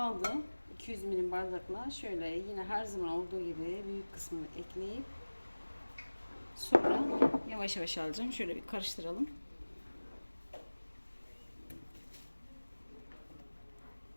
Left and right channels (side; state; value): both; inverted; correlation -1.00